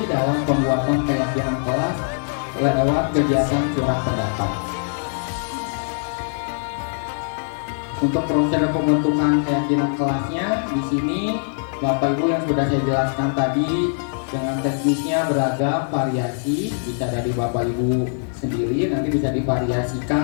dalam pembuatan keyakinan kelas lewat kegiatan surat pendapat. Untuk proses pembentukan keyakinan kelasnya, di sini Bapak Ibu yang sudah saya jelaskan tadi dengan teknisnya beragam variasi, bisa dari Bapak Ibu sendiri, nanti bisa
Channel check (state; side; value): silent; right; 58 dB below the other